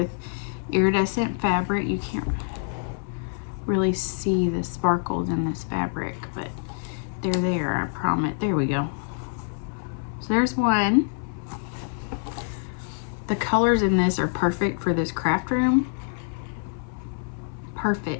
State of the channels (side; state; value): right; silent; 61 dB below the other